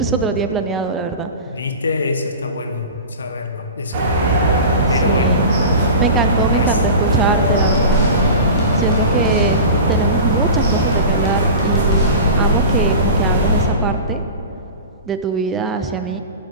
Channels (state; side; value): inverted; both; correlation -0.33